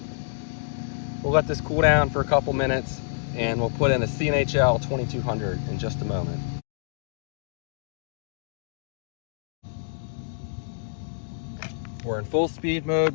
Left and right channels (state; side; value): silent; right; digital silence